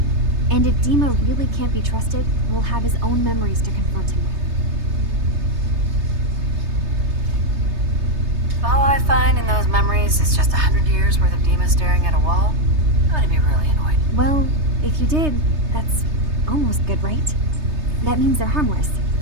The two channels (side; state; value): left; late; 3.3 ms